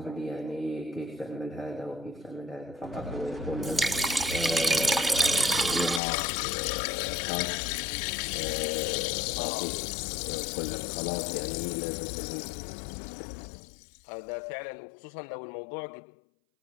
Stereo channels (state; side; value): drops out; right; at 6.0 s